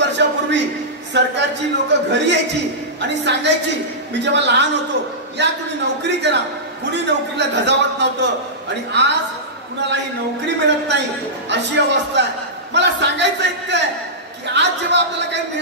सरकारची लोक घरी यायची आणि सांगायची, मी जेव्हा लहान होतो, या तुम्ही नोकरी करा. कुणी नोकरीला धजावत नव्हतं आणि आज कुणालाही नोकरी मिळत नाही अशी अवस्था आहे. मला सांगायचं इतकं आहे की आज जेव्हा आपल्याला काही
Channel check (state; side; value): normal; both; correlation -0.15